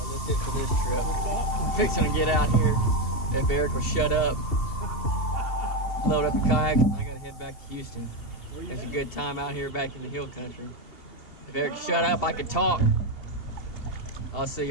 It for this trip. I'm fixing to get out here. If Eric will shut up, load up the kayak. I gotta head back to Houston. It's a good time out here back in the hill country. If Eric shut up, I could talk. I'll see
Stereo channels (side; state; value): right; late; 2.7 ms